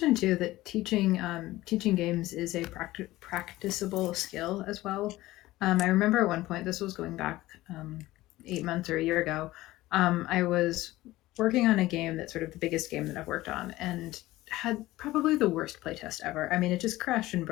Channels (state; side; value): quieter; right; 17.4 dB